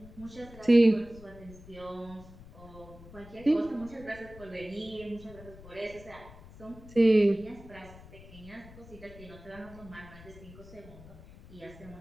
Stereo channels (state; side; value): noise; left; rumble, 18 dB below the sound